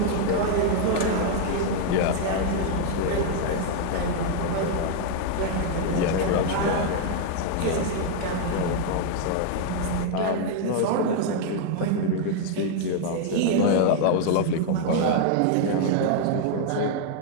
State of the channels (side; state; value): both; different; correlation 0.00